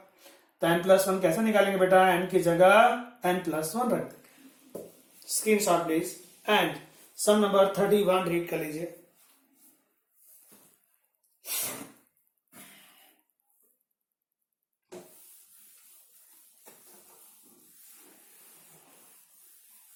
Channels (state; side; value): identical; both; correlation 1.00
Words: n+1 कैसे निकालेंगे बेटा? n की जगह n+1 रख देंगे। Screenshot please and sum number 31 read कर लीजिए।